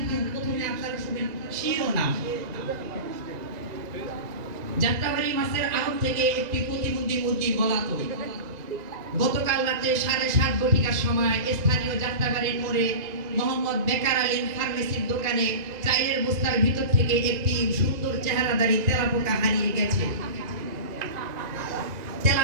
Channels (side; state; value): left; late; 1.9 ms